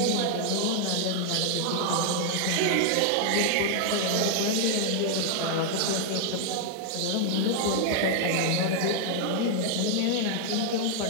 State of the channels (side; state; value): both; different; correlation 0.00